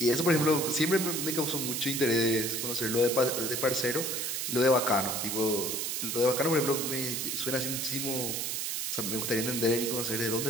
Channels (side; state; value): right; noise; hiss, 2 dB below the sound